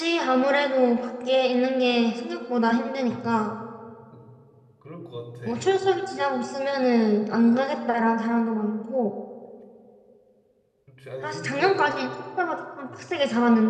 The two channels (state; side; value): identical; both; correlation 1.00